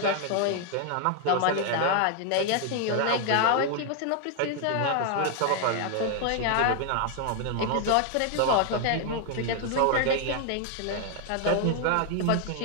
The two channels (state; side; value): different; both; correlation 0.00